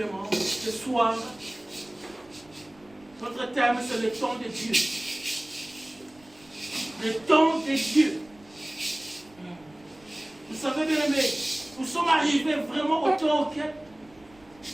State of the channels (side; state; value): right; noise; rumble, 28 dB below the sound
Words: ce soir, notre thème c'est le temps de Dieu. Le temps de Dieu. Vous savez bien aimé, nous sommes arrivés vraiment au temps auquel